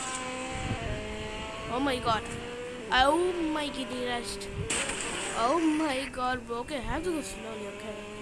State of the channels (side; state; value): both; identical; correlation 1.00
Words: Oh my god. Oh my kitty rest. Oh my god, bro. Okay, I have to go slowly, okay?